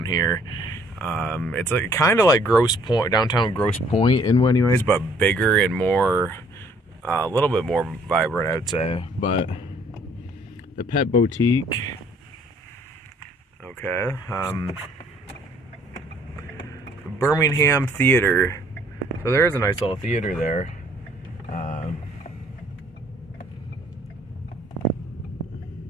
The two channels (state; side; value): normal; both; correlation 0.61